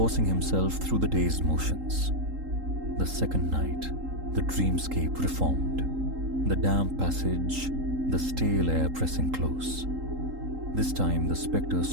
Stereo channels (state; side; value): late; left; 3.8 ms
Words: himself through the day's motions. The second night, the dreamscape reformed. The damp passage, the stale air pressing close. This time the spectre